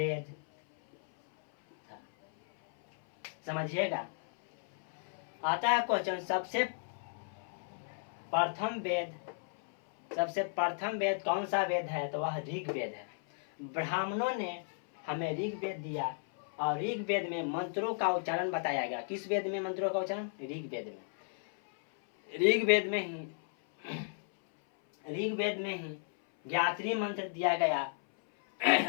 था। समझिएगा, आता है क्वेश्चन, सबसे प्रथम वेद कौन सा वेद है? तो वह ऋग वेद है। ब्राह्मणों ने हमें ऋग वेद दिया और ऋग वेद में मंत्रों का उच्चारण बताया गया। किस वेद में मंत्रों का उच्चारण? ऋग वेद में। ऋग वेद में ही गायत्री मंत्र दिया गया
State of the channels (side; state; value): right; silent; 55 dB below the other